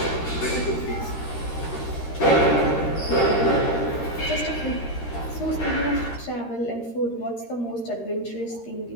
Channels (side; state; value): right; late; 13 ms